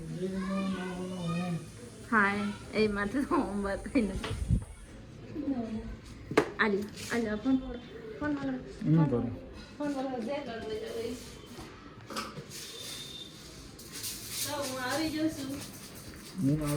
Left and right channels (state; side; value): identical; both; correlation 1.00